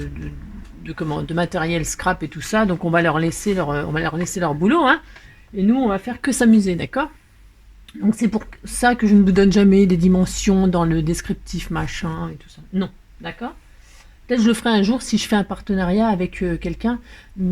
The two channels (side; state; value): both; identical; correlation 1.00